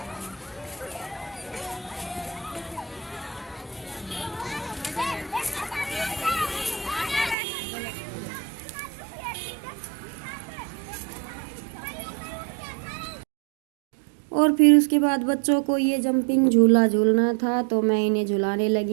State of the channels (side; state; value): left; drops out; at 7.4 s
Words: और फिर उसके बाद बच्चों को ये जंपिंग झूला झूलना था, तो मैं इन्हें झुलाने